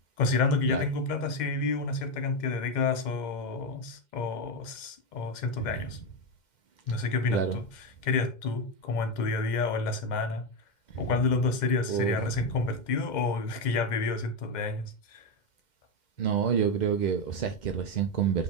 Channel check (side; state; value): right; late; 2.1 ms